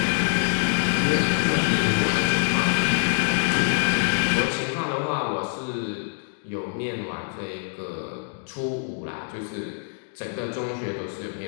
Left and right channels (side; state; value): right; silent; digital silence